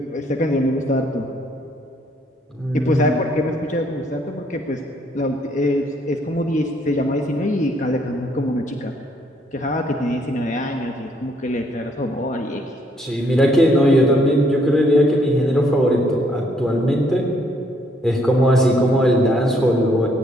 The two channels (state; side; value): normal; both; correlation 0.68